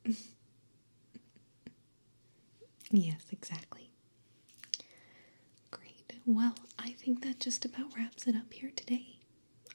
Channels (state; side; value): inverted; both; correlation -1.00